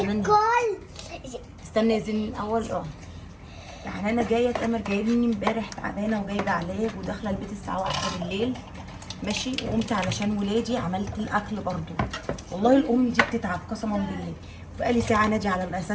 استنى يا زين الاول. يعني انا جايه تامر جايبني امبارح تعبانه وجايبه علاج وداخله البيت الساعه 1 بالليل ماشي، وقمت علشان ولادي عملت الاكل برضو. والله الام دي بتتعب قسما بالله. بقالي ساعه نادي على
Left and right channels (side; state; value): both; identical; correlation 1.00